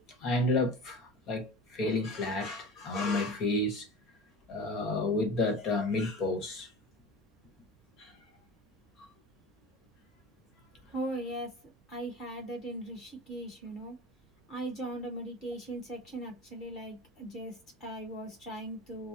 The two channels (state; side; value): normal; both; correlation 0.35